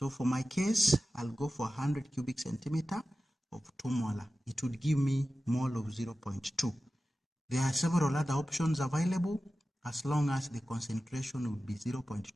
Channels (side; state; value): both; normal; correlation 0.94